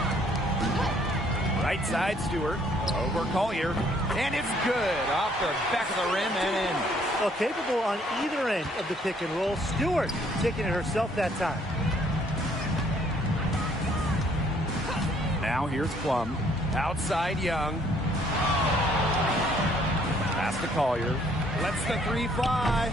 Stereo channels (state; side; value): normal; both; correlation 0.64